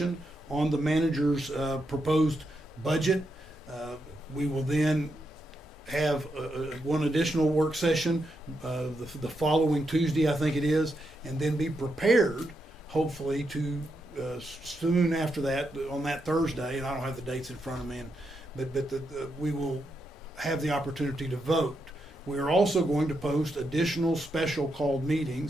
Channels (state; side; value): normal; both; correlation 0.83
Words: on the manager's proposed budget. We will then have one additional work session the following Tuesday, I think it is, and then be prepared, hopefully, to soon after that, on that Thursday, and I don't have the dates in front of me, but we will have the opportunity to vote. We are also going to post additional special called